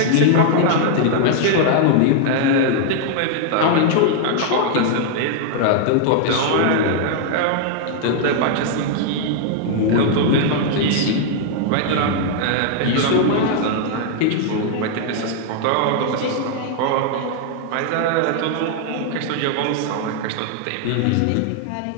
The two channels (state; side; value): different; both; correlation 0.00